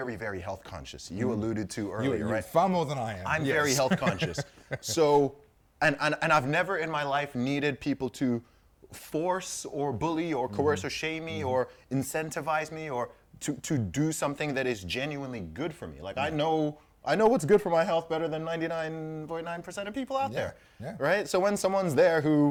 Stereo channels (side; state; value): both; identical; correlation 1.00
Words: very health conscious. You alluded to earlier, You're right? far more than I am. I'm Yes. very health conscious. So, and I've never in my life needed people to force or bully or coerce or shame me or incentivize me or to do something that is genuinely good for me. Like I know what's good for my health better than 99.9% of people out there. Yeah. Right? So when someone's there